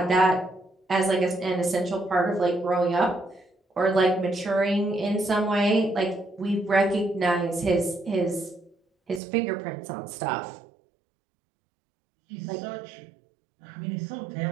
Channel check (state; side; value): drops out; left; at 9.2 s